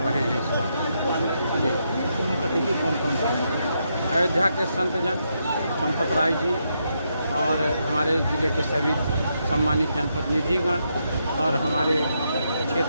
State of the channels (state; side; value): inverted; both; correlation -0.81